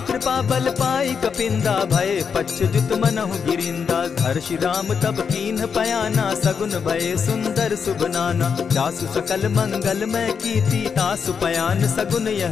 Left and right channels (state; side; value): quieter; right; 6.4 dB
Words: बल पाई कपिंदा, भय पच्युत मनहु गिरिंदा। हर्षि राम तब कीन्ह पयाना, सगुन भय सुंदर शुभ नाना। जासु सकल मंगल में कीर्ति, तासु पयान सगुन